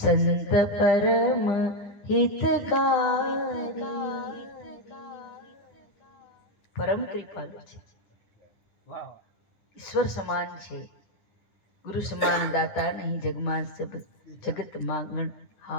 સંત પરમ હિતકારી. પરમ કૃપાલુ છે, ઈશ્વર સમાન છે, ગુરુ સમાન દાતા નહીં. જગમાં જગત માંગણ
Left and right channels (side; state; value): right; late; 9.6 ms